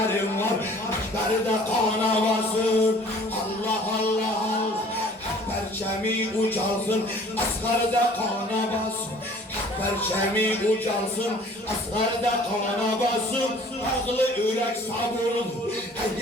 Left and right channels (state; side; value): normal; both; correlation 0.51